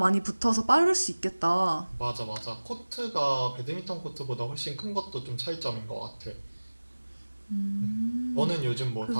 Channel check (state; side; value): inverted; both; correlation -1.00